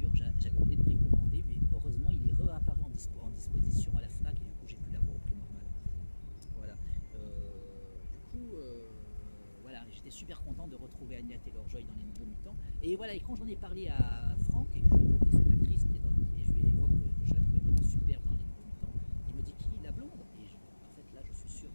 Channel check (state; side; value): inverted; both; correlation -1.00